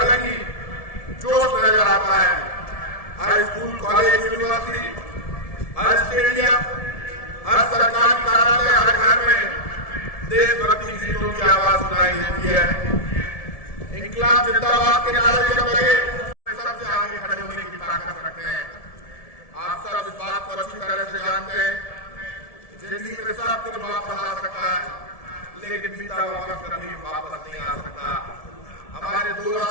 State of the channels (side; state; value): right; late; 1.7 ms